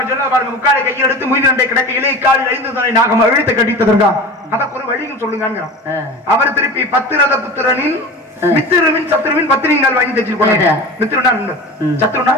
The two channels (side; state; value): both; normal; correlation 0.33